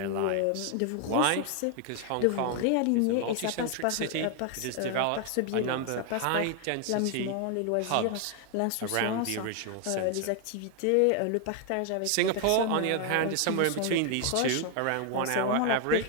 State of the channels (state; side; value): different; both; correlation 0.00